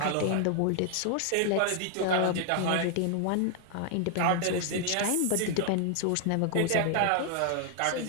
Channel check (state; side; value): different; both; correlation 0.00